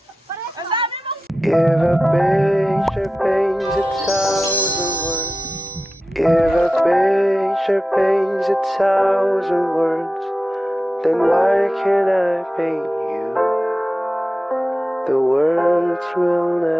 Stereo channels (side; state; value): both; normal; correlation 0.93